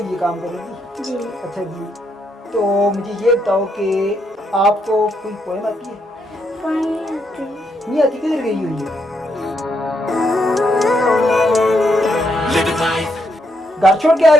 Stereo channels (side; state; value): both; normal; correlation 0.77